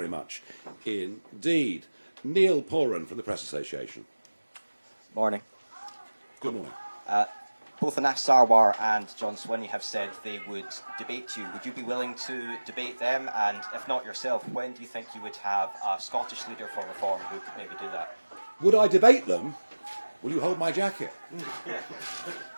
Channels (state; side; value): inverted; both; correlation -1.00